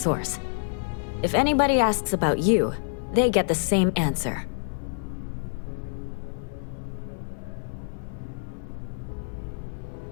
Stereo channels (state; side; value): silent; right; 60 dB below the other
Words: If anybody asks about you, they get the same answer.